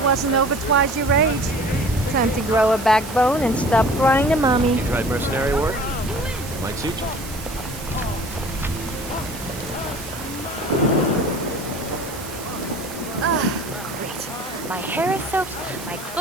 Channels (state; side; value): noise; right; hiss, 13 dB below the sound